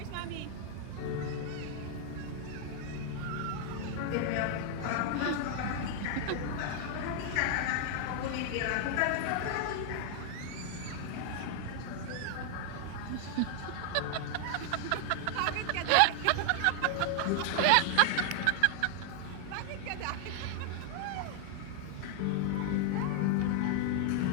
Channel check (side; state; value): both; different; correlation 0.00